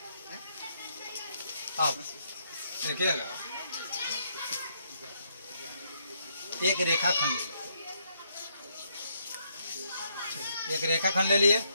अब देखिएगा, एक रेखाखंड ले लिए, एक रेखाखंड ले लिए।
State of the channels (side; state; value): both; inverted; correlation -0.74